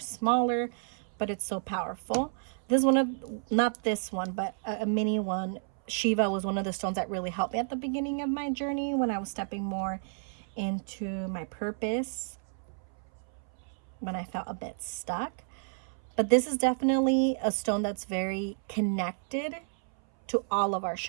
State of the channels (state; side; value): silent; left; 57 dB below the other